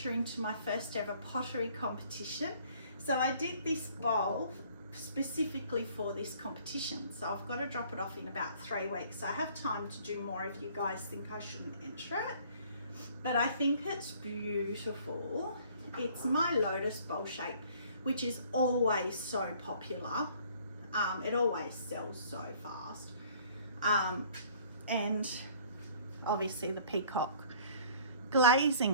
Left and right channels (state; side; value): inverted; both; correlation -0.55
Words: into my first ever pottery competition. So I did this bowl specifically for this competition. So I've got to drop it off in about 3 weeks. So I have time to do more if you guys think I shouldn't enter it. But I think it's beautiful. It's my lotus bowl shape, which is always so popular. It always sells so fast. And obviously the peacock